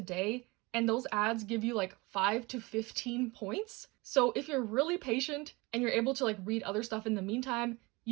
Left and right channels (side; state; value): left; quieter; 24.5 dB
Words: day, and those ads give you 5 to 15 points. So if you're really patient and you're able to read other stuff in the meantime,